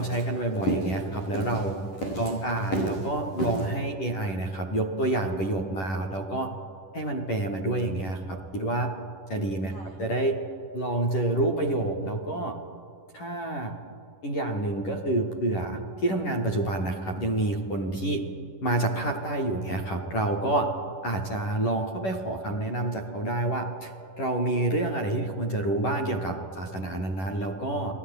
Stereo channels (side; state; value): right; late; 11 ms